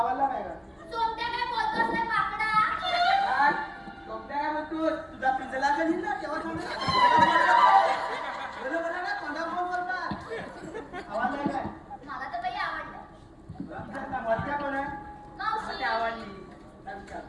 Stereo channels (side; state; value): both; identical; correlation 1.00